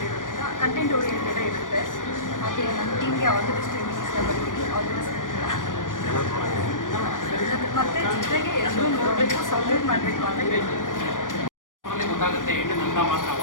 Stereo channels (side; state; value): right; late; 0.88 ms